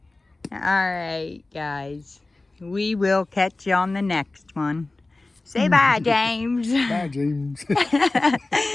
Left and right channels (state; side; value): quieter; right; 3.1 dB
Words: right, guys. We will catch you on the next one. Say bye, James. Bye, James.